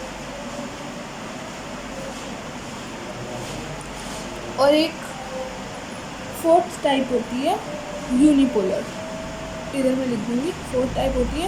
और एक फोर्थ टाइप होती है यूनिपोलर। इधर मैं लिख दूँगी, फोर्थ टाइप होती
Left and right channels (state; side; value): identical; both; correlation 1.00